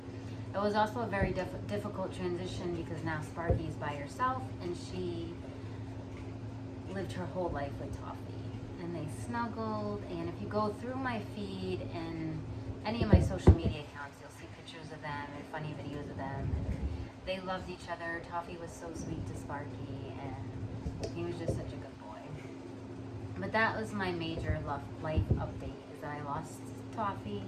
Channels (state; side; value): identical; both; correlation 1.00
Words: It was also a very difficult transition because now Sparky's by herself and she lived her whole life with Toffee. And they snuggled, and if you go through my feed and any of my social media accounts, you'll see pictures of them and funny videos of them. And they loved each other. Toffee was so sweet to Sparky, and he was just such a good boy. But that was my major life update, is that I lost Toffee.